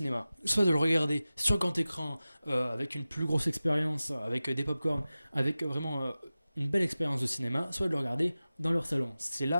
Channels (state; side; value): inverted; both; correlation -0.96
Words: Soit de le regarder sur grand écran avec une plus grosse expérience, avec des pop-corn, avec vraiment une belle expérience de cinéma, soit de le regarder dans leur salon. C'est